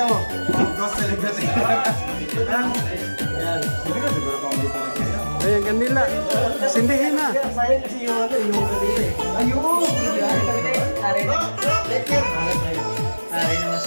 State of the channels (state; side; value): inverted; both; correlation -1.00